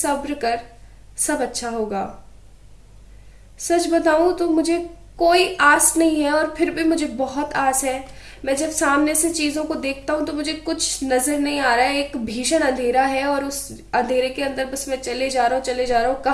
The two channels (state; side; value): identical; both; correlation 1.00